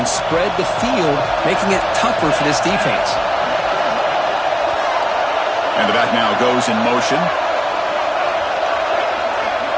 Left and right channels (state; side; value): identical; both; correlation 1.00